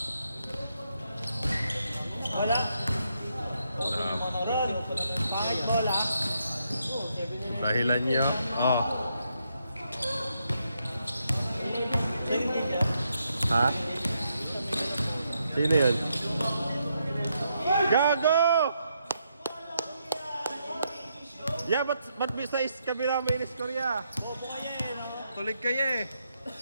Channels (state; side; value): inverted; both; correlation -0.79